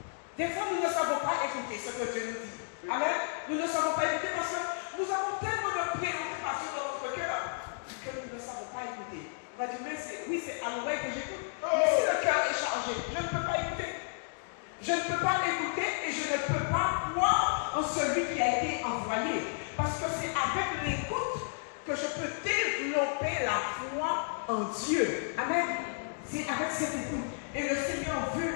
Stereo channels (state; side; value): silent; right; digital silence